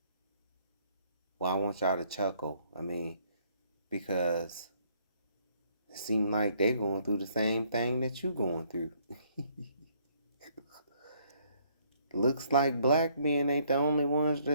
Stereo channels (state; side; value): inverted; both; correlation -0.66